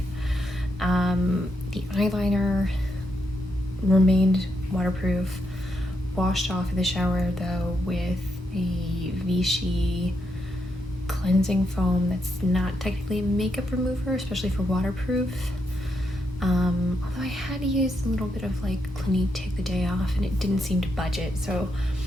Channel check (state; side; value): normal; both; correlation 0.81